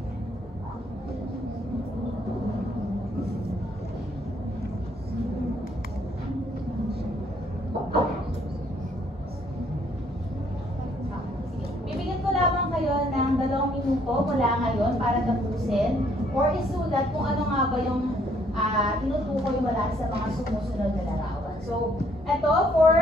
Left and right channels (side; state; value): both; normal; correlation 0.66